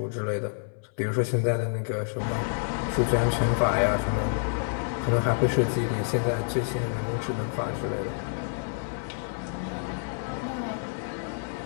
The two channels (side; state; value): right; silent; 59 dB below the other